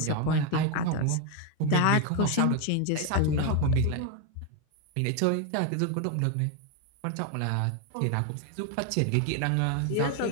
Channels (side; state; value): both; different; correlation 0.01